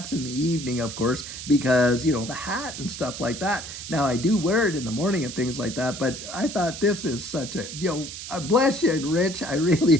in the evening, of course, because, the hat and stuff like that. Now, I do wear it in the morning and things like that, but I thought this is such a, bless you, Rich. I really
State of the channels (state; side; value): noise; right; hiss, 10 dB below the sound